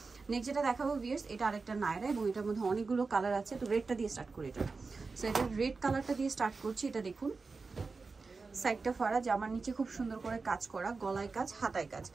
নেক্সট যেটা দেখাবো ভিউয়ার্স, এটা আরেকটা নায়রা, এবং এটার মধ্যে অনেকগুলো কালার আছে। তো রেডটা দিয়ে স্টার্ট করি এটা। সো এটা রেড কালারটা দিয়ে স্টার্ট করছি। এটা দেখুন, সাইডটা ফাড়া, জামার নিচে খুব সুন্দর করে কাজ করা, গলায় কাজ, হাতায় কাজ,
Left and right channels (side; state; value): left; quieter; 4.2 dB